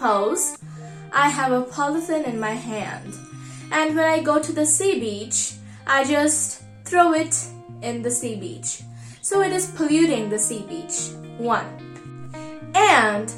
I have a polythene in my hand, and when I go to the sea beach, I just throw it in the sea beach. So it is polluting the sea beach. 1. And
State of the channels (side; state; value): both; identical; correlation 1.00